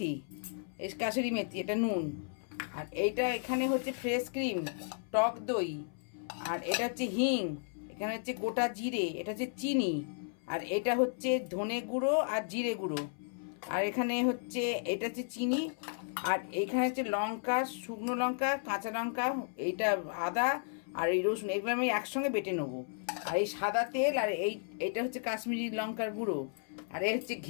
মেথি, এটা নুন। আর এইটা এখানে হচ্ছে ফ্রেশ ক্রিম, টক দই, আর এটা হচ্ছে হিং, এখানে হচ্ছে গোটা জিরে, এটা হচ্ছে চিনি, আর এটা হচ্ছে ধনে গুঁড়ো আর জিরে গুঁড়ো, আর এখানে হচ্ছে এটা হচ্ছে চিনি, আর এইখানে হচ্ছে লঙ্কা, শুকনো লঙ্কা, কাঁচা লঙ্কা, এইটা আদা, আর এই রসুন, এগুলো আমি একসঙ্গে বেটে নেবো। আর এই সাদা তেল, আর এইটা হচ্ছে কাশ্মীরি লঙ্কার গুঁড়ো, আর এই হচ্ছে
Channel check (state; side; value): silent; right; 55 dB below the other